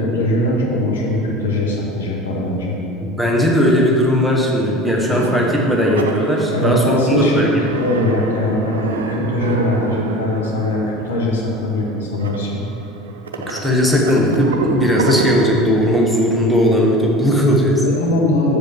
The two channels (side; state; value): both; normal; correlation 0.37